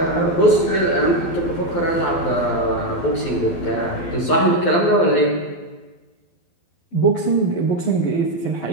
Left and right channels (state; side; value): late; right; 12 ms